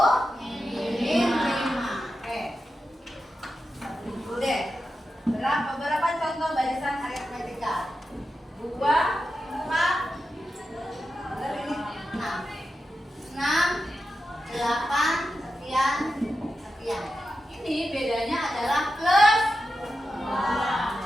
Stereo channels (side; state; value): both; normal; correlation 0.90